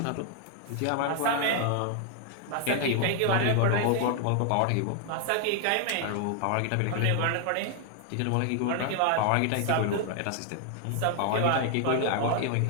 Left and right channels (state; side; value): different; both; correlation 0.00